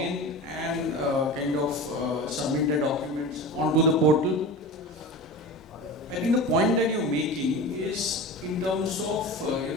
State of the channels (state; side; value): normal; both; correlation 0.31